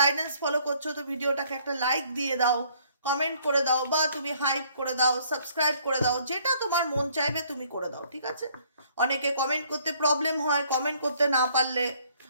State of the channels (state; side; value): inverted; both; correlation -0.62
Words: ফলো করছো তো ভিডিওটাকে একটা লাইক দিয়ে দাও, কমেন্ট করে দাও, বা তুমি হাইপ করে দাও, সাবস্ক্রাইব করে দাও, যেটা তোমার মন চাইবে তুমি করে দাও, ঠিক আছে। অনেকে কমেন্ট করতে প্রবলেম হয়, কমেন্ট করতে না পারলে